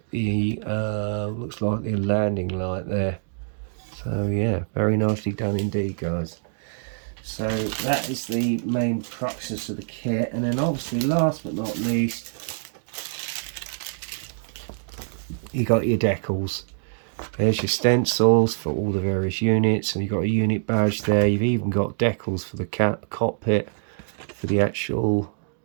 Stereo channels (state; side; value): silent; left; digital silence